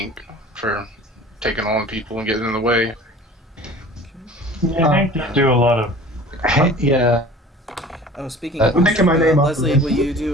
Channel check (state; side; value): normal; both; correlation 0.44